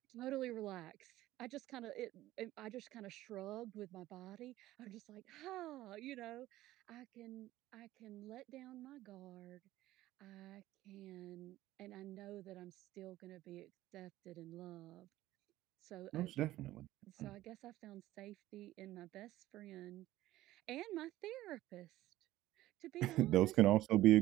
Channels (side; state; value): left; quieter; 15.6 dB